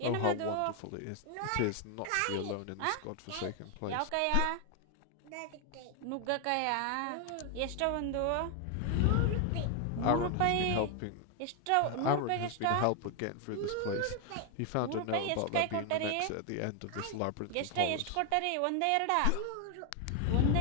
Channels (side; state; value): both; different; correlation 0.01